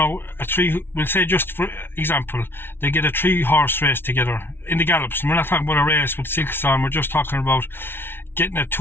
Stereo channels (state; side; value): late; right; 0.11 ms